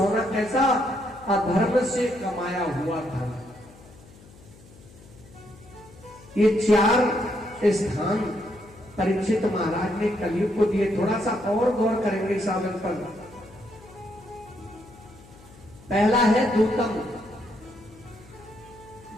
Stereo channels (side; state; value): left; noise; hum, 23 dB below the sound